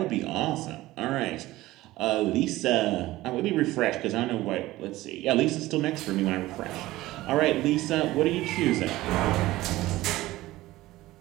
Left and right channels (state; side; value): quieter; left; 17.4 dB